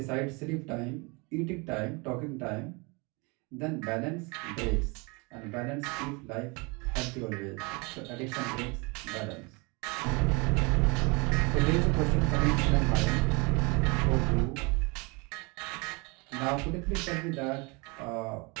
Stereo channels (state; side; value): quieter; left; 29.0 dB